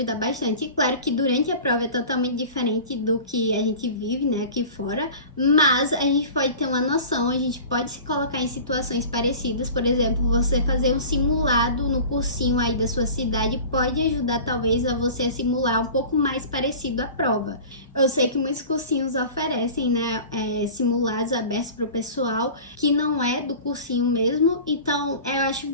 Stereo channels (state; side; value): inverted; both; correlation -0.39